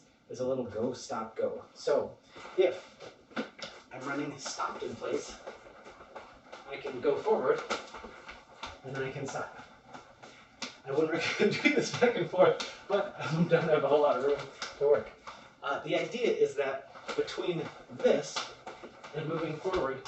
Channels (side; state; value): both; identical; correlation 1.00